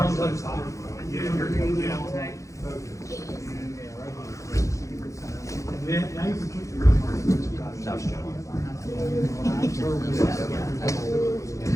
to the top. Now you can keep your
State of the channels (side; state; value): right; late; 0.15 ms